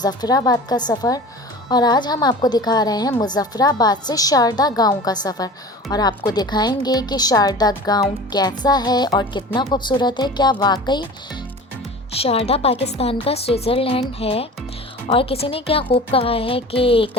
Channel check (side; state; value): both; normal; correlation 0.38